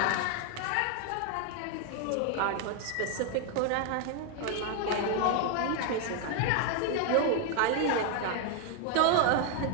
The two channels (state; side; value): different; both; correlation 0.00